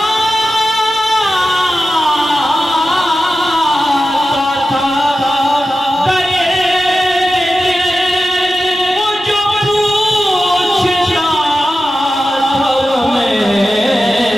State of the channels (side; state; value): both; normal; correlation 0.92